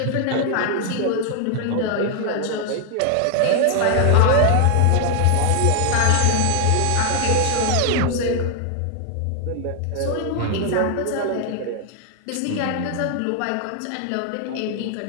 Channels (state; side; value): different; both; correlation 0.00